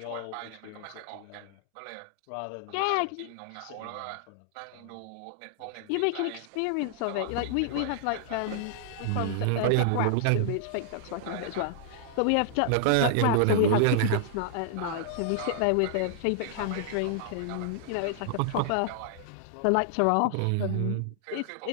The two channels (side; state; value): both; different; correlation -0.01